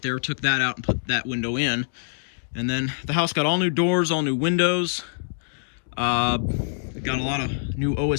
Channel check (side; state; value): right; silent; digital silence